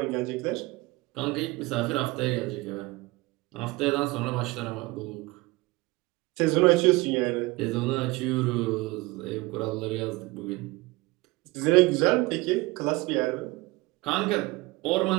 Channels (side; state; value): left; quieter; 22.1 dB